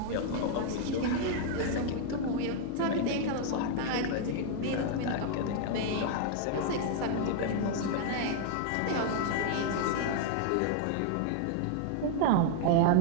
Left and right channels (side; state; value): both; different; correlation 0.00